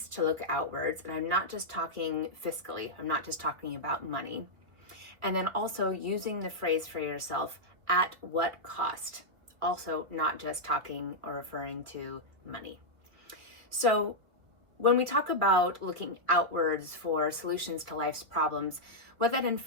to look outwards. And I'm not just talking fiscally, I'm not just talking about money. And then also using the phrase for yourself, at what cost? Also not just talking or referring to money. So when we talk about looking outwards for solutions to life's problems, what that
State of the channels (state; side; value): late; left; 2.2 ms